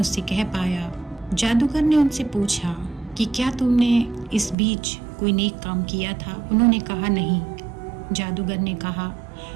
कह पाया। जादूगर ने उनसे पूछा कि क्या तुमने इस बीच कोई नेक काम किया था? उन्होंने कहा नहीं। जादूगर ने कहा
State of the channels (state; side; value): drops out; left; at 4.5 s